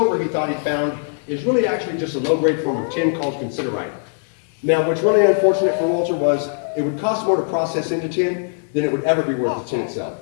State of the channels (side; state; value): right; silent; digital silence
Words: he thought he found is really actually just a low-grade form of tin called considerite. Now, what's really unfortunate for Walter was it would cost more to process into tin than it would ever be worth the tin itself.